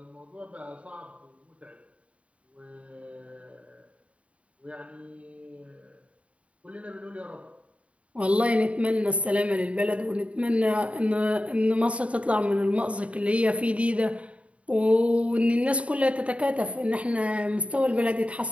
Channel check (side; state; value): left; late; 0.064 ms